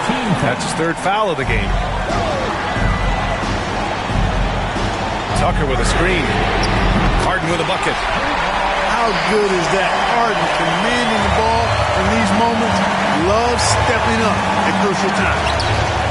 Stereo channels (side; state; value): both; identical; correlation 1.00